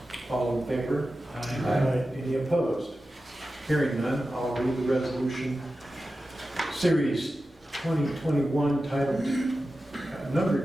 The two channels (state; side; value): normal; both; correlation 0.93